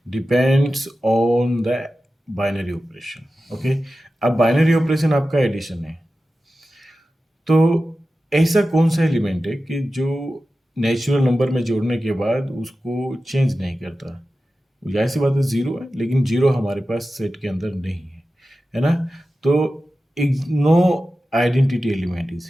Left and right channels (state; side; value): normal; both; correlation 0.94